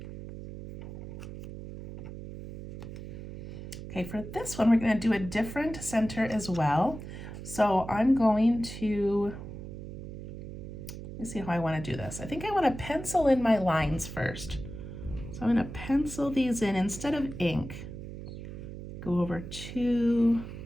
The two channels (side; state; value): right; noise; hum, 10 dB below the sound